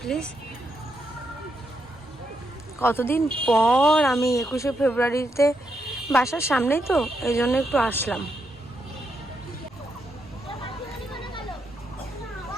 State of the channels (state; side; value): normal; both; correlation 0.81